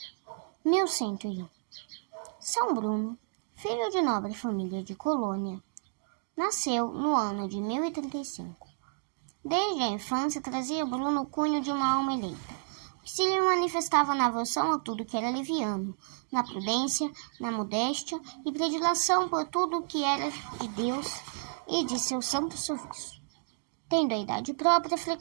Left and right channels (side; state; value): left; silent; digital silence